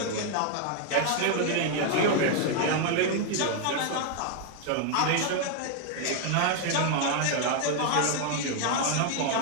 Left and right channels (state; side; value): different; both; correlation 0.00